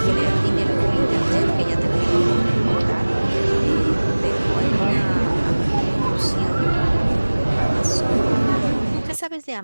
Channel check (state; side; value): inverted; both; correlation -1.00